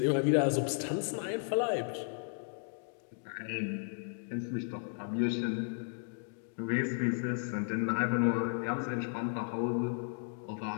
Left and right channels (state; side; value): silent; right; digital silence